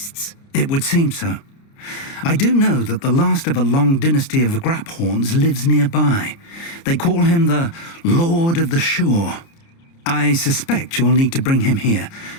It would seem so. I do know that the last of a long dynasty of Graphorns lives nearby. They call him the Lord of the Shore. I suspect you'll need to bring him here.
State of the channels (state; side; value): late; right; 30 ms